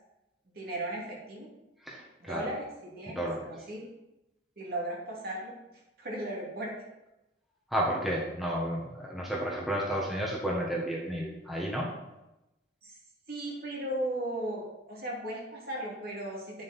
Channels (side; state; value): both; normal; correlation 0.38